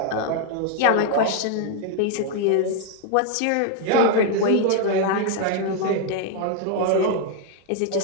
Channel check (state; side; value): different; both; correlation 0.00